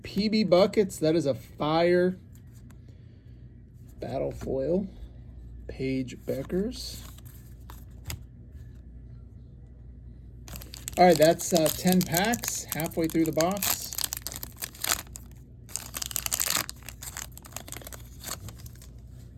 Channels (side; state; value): both; identical; correlation 1.00